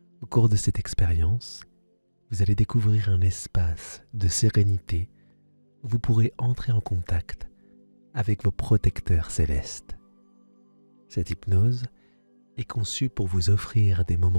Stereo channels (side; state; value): both; inverted; correlation -1.00